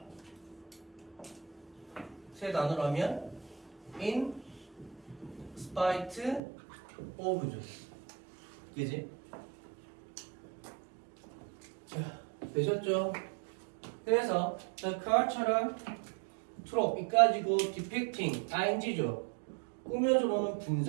세 단어로 하면 in spite of죠. 그지? 자, 되셨죠? 그래서 the car처럼 trope 이까지고 depicting ing죠. 꾸며주로는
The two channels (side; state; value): left; drops out; at 6.4 s